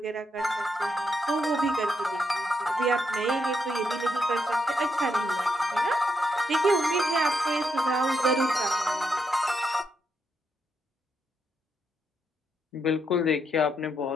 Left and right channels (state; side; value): normal; both; correlation 0.80